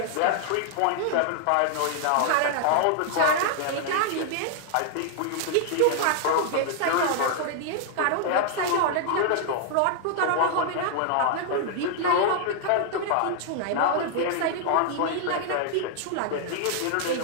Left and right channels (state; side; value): different; both; correlation 0.00